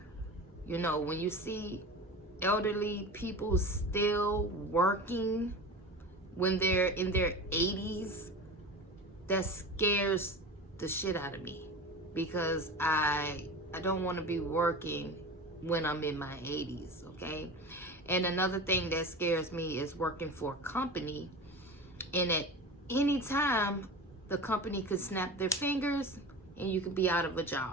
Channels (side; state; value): both; normal; correlation 0.32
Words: You know, when you see elderly people still working when they're in their 80s, that scares the shit out of me because I don't want to be working when I'm in my 80s, okay? And another thing that scares me is working for a company, and at any time the company could snap their fingers and you could be out of a